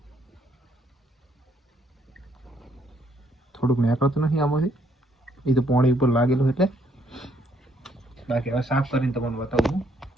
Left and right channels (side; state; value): both; normal; correlation 0.70